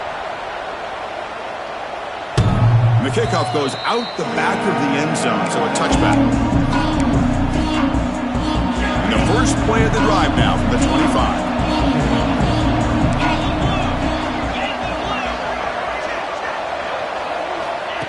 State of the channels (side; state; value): both; identical; correlation 1.00